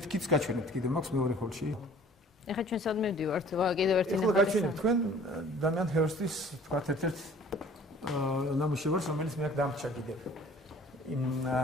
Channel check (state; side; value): normal; both; correlation 0.51